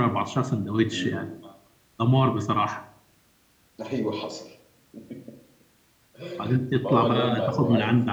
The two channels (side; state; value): both; identical; correlation 1.00